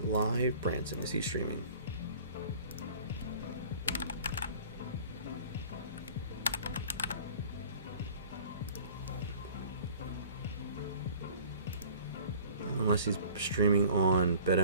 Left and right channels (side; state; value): both; inverted; correlation -0.48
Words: Live Branson. Is he streaming? Unless he's streaming on